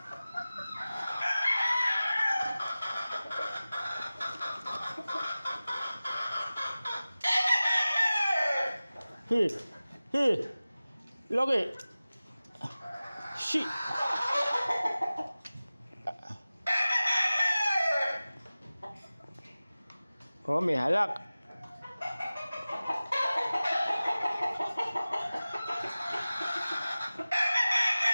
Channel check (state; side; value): inverted; both; correlation -0.97